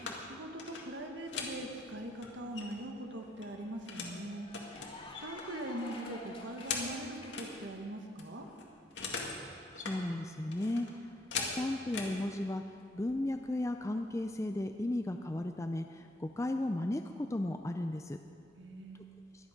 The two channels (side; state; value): both; normal; correlation 0.71